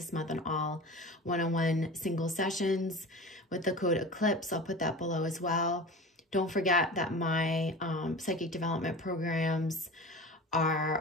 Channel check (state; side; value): normal; both; correlation 0.34